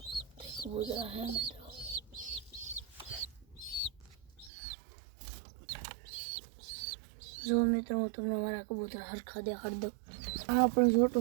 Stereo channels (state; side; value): drops out; left; at 4.5 s